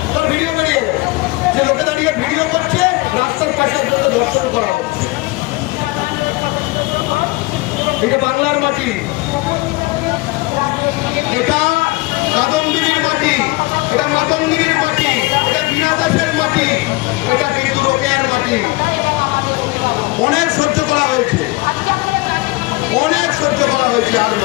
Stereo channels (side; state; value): right; quieter; 22.7 dB